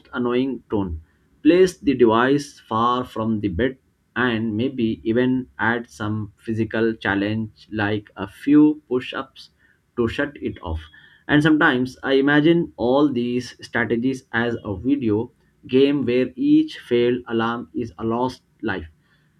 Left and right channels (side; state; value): both; identical; correlation 1.00